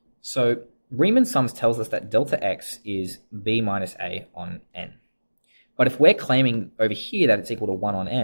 So Riemann sums tells us that delta x is b minus a on n. But if we're claiming over here that it's equal to 1 on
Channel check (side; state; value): both; inverted; correlation -1.00